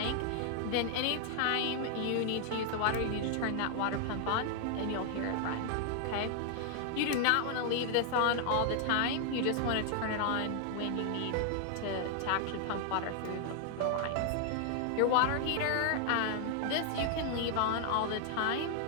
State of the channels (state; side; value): different; both; correlation 0.00